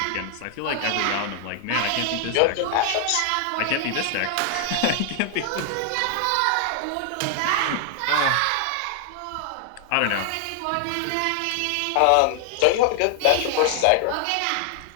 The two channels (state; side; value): different; both; correlation 0.00